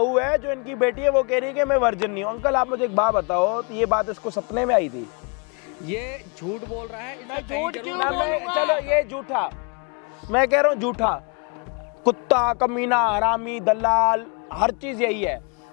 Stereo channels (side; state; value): right; quieter; 34.6 dB